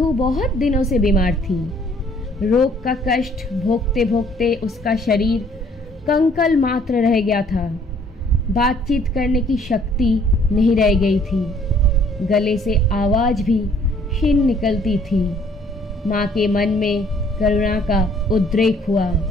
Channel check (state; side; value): normal; both; correlation 0.60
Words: बहुत दिनों से बीमार थी। रोग का कष्ट भोगते भोगते उसका शरीर कंकल मात्र रह गया था। बातचीत करने की शक्ति नहीं रह गई थी। गले से आवाज़ भी क्षीण निकलती थी। माँ के मन में करुणा का उद्रेक हुआ।